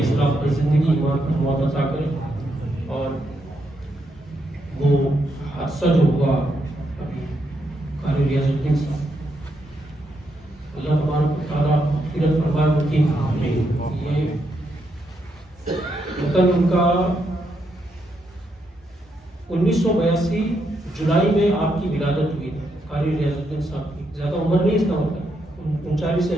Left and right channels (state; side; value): normal; both; correlation 0.79